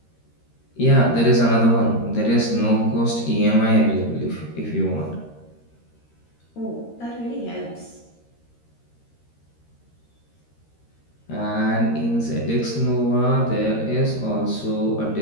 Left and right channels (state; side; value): late; right; 13 ms